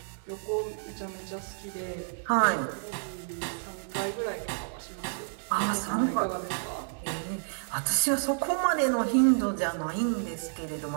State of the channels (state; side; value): silent; left; 58 dB below the other